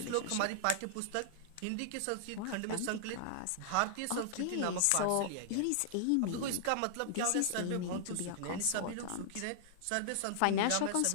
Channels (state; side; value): different; both; correlation -0.01